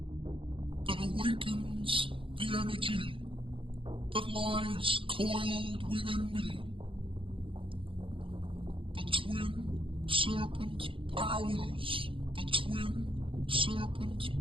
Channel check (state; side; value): late; left; 0.25 ms